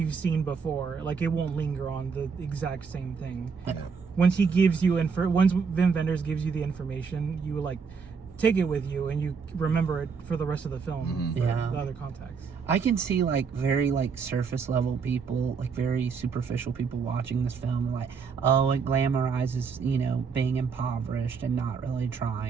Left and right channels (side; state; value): left; quieter; 5.6 dB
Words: seen before. Like it won't linger on the exact same thing. Once he gives you once Wim Wenders gives you the information, you like take it with you and you remember it for the rest of the film for the other context. I can see like very like surface level people, like very superficial people watching this film, like, oh, it glamorizes, you know, being impoverished and not really